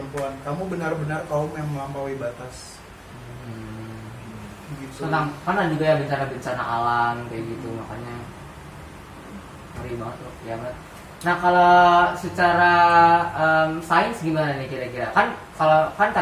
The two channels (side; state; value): both; identical; correlation 1.00